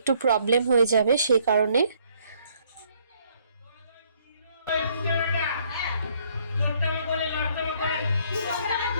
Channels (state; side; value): inverted; both; correlation -0.66